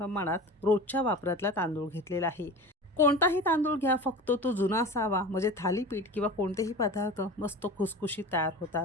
रोजच्या वापरातला तांदूळ घेतलेला आहे. कोणताही तांदूळ घ्या, फक्त तो जुना असावा, म्हणजे थालीपीठ किंवा कोणतेही पदार्थ मस्त खुसखुशीत तयार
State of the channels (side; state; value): both; normal; correlation 0.34